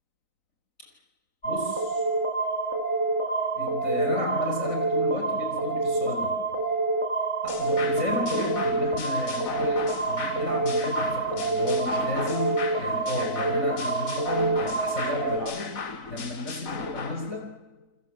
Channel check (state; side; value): late; right; 3.9 ms